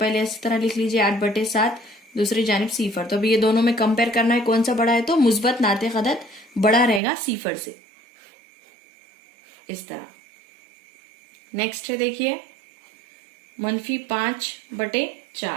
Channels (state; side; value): drops out; left; at 7.0 s